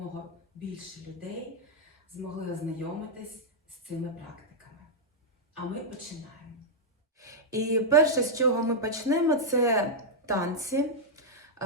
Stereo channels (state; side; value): normal; both; correlation -0.06